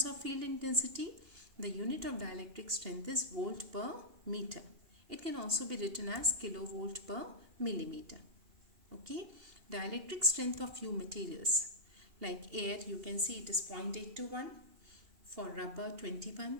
of field intensity, the unit of dielectric strength is volt per meter. It can also be written as kilovolt per millimeter. Okay, dielectric strength of few materials like air, you can see it is 0.8 to 1, for rubber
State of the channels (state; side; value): late; left; 2.8 ms